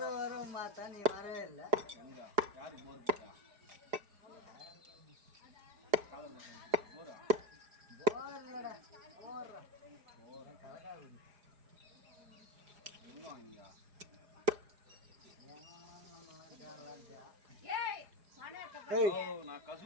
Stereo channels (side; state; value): left; late; 4.9 ms